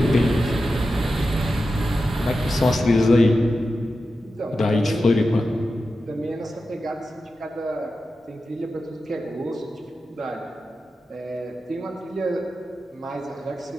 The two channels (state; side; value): normal; both; correlation 0.91